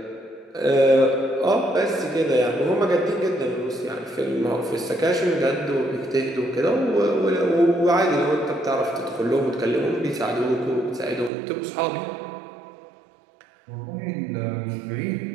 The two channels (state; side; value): drops out; left; at 11.3 s